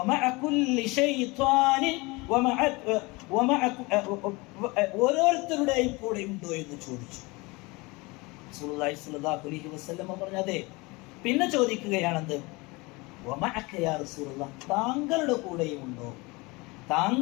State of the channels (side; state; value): right; quieter; 24.8 dB